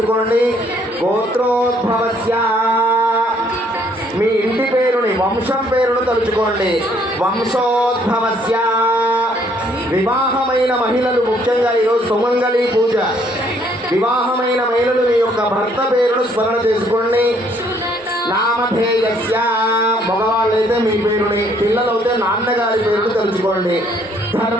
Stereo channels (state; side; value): normal; both; correlation 0.65